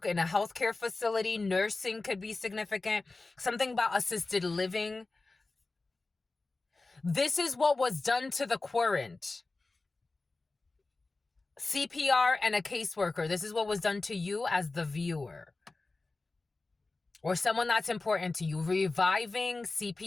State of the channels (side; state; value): right; quieter; 3.4 dB